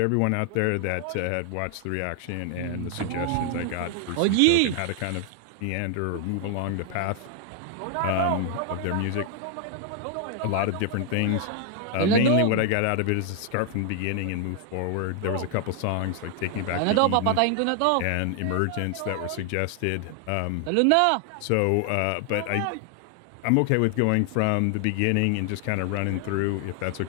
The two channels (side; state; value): both; different; correlation 0.00